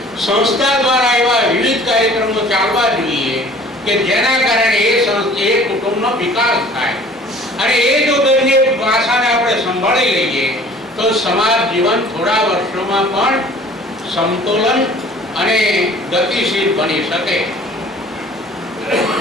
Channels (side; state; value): both; normal; correlation 0.49